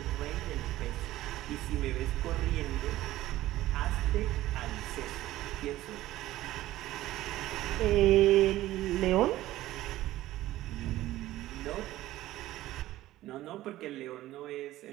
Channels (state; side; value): quieter; left; 15.4 dB